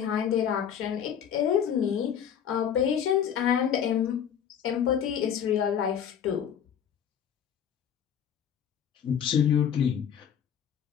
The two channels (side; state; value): right; quieter; 8.6 dB